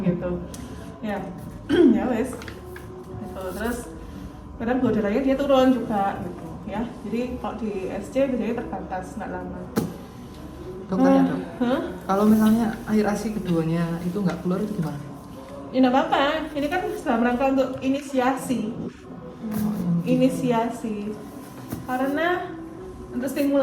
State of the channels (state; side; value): identical; both; correlation 1.00